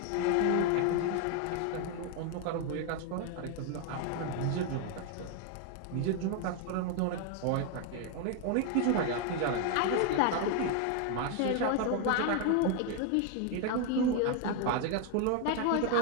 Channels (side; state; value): both; different; correlation 0.01